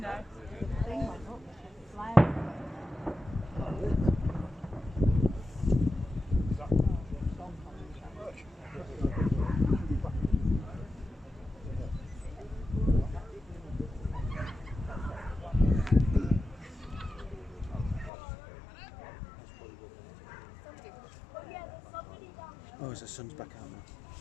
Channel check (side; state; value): right; drops out; at 18.1 s